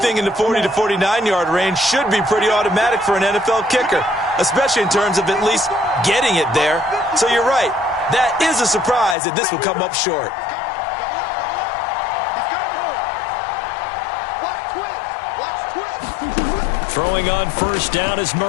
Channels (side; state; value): right; drops out; at 9.2 s